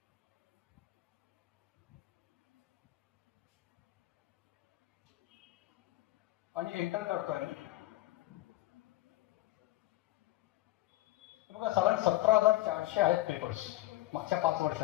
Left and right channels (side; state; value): right; quieter; 16.9 dB